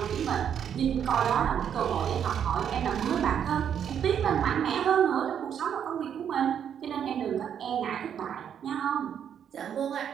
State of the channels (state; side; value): quieter; left; 8.6 dB